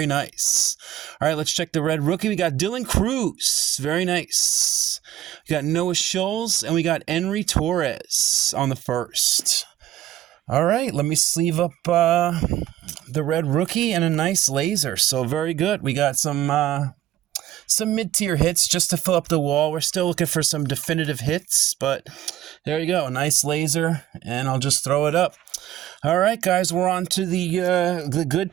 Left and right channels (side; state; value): left; quieter; 13.2 dB